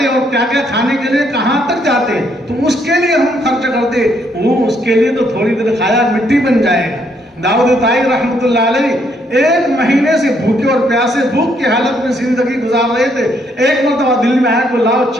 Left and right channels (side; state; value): both; normal; correlation 0.71